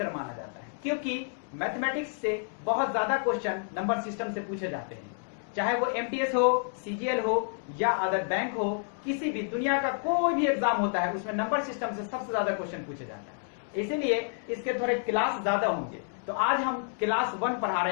माना जाता है, क्योंकि मैथमेटिक्स से बहुत ज्यादा क्वेश्चन नंबर सिस्टम से पूछे जाते हैं। चाहे वो एमटीएस हो, सीजीएल हो या अदर बैंक हो, किसी भी दुनिया का कोई भी एग्जाम होता है उसमें नंबर सिस्टम से सबसे ज्यादा क्वेश्चन पूछे जाता है। इसीलिए इसके थोड़े क्लास ज्यादा होंगे। तो आज हम क्लास 1 पढ़ा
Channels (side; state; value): right; silent; 58 dB below the other